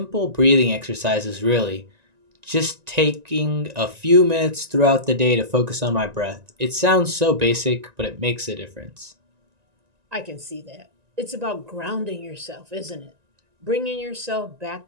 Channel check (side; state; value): left; late; 1.9 ms